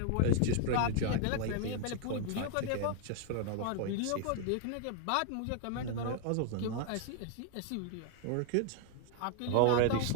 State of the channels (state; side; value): different; both; correlation 0.00